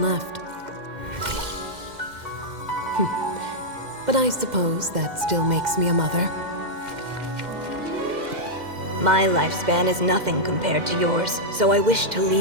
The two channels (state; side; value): late; left; 2.1 ms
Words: left. But I suppose that still makes me a mother. My lifespan is nothing compared to yours, so I wish to